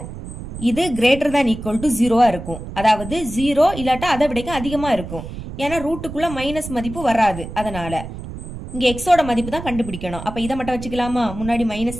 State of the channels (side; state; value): right; noise; rumble, 10 dB below the sound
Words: இது கிரேட்டர் தான் ஈக்குவல் டு 0 இருக்கும். அதாவது 0 இல்லாட்டா அதை விட அதிகமா இருக்கும். ஏன்னா ரூட்டுக்குள்ள மைனஸ் மதிப்பு வராது. அதனால இங்க எக்ஸோட மதிப்பு தான் கண்டுபிடிக்கணும். அப்ப இதை மட்டும் வச்சுக்கலாமா? முன்னாடி